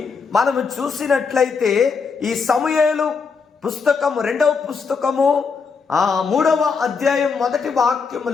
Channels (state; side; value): quieter; right; 5.3 dB